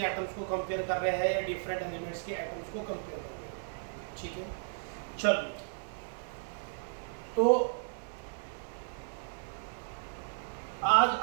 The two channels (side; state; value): left; silent; digital silence